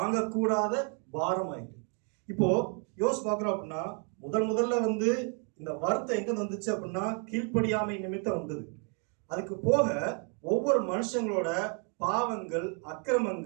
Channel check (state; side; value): quieter; left; 39.0 dB